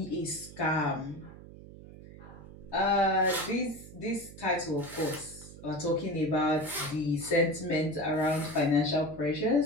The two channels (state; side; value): noise; right; hum, 17 dB below the sound